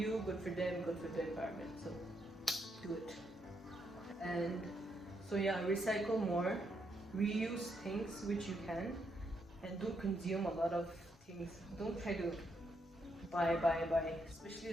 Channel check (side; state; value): both; normal; correlation 0.78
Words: good for them, good for the environment. So do it. And so yeah, recycle more, reuse things which you can, and don't consume a lot of things. Don't try to buy, especially